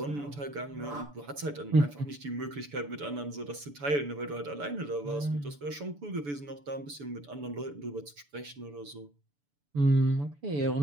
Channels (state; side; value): late; left; 6.9 ms